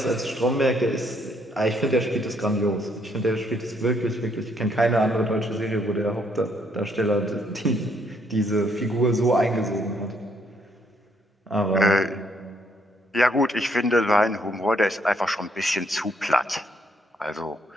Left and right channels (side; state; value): both; normal; correlation 0.70